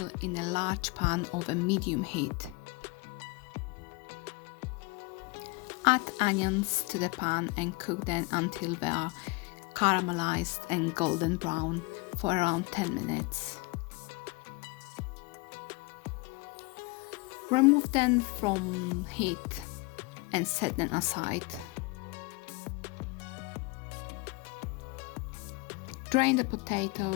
in a large pan of a medium heat. Add onions to the pan and cook them until they are caramelized and golden brown for around 10 minutes. Remove them from heat and set them aside. Drain the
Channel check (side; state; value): right; quieter; 25.7 dB